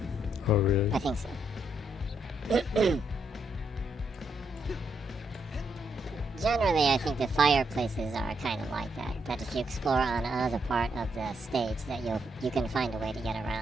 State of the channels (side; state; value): both; normal; correlation 0.78